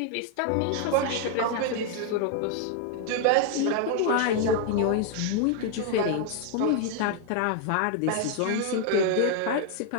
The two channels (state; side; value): different; both; correlation 0.00